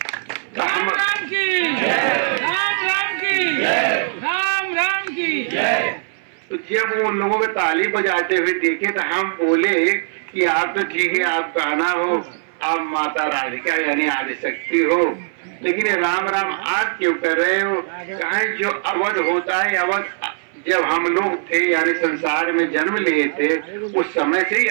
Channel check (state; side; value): silent; left; 62 dB below the other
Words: राम राम की राम राम की राम राम की। तो जब वो लोगों को ताली बजाते हुए देखे तो हम बोले कि आप तो ठीक है, आप कान्हा हो, आप माता राधिका यानी आदिशक्ति हो, लेकिन ये राम राम आप क्यों कर रहे हो? कहा जो अवध होता है, अवध जब हम लोग थे यानी संसार में जन्म लिए थे उस समय से ही